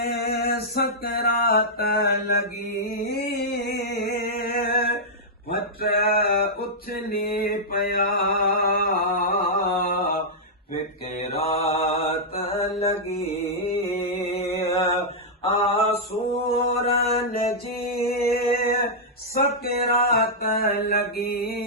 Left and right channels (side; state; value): both; normal; correlation -0.08